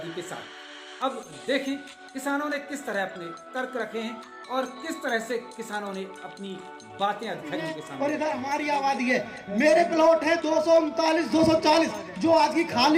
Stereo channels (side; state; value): both; identical; correlation 1.00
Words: के साथ। अब देखें किसानों ने किस तरह अपने तर्क रखे हैं और किस तरह से किसानों ने अपनी बातें अधिकारियों के सामने। और इधर हमारी आबादी है, मेरे प्लॉट है 239 240 जो आज की